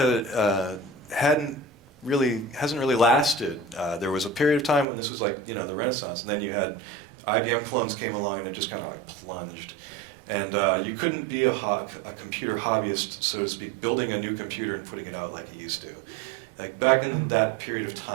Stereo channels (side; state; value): left; drops out; at 4.9 s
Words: hasn't really lasted. There was a period of time when this was like the Renaissance, and then you had IBM clones came along, and it just kind of like plunged. And you couldn't be a computer hobbyist, so to speak, building a new computer and putting it out like you used to. Like back in that period of